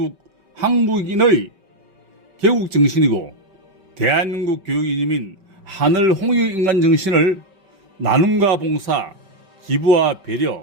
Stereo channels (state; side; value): late; left; 5.3 ms